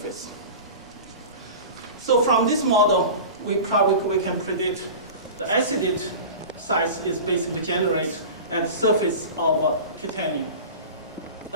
So from this model, we can predict the acid size is basically generated at the surface of titanium.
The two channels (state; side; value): inverted; both; correlation -0.33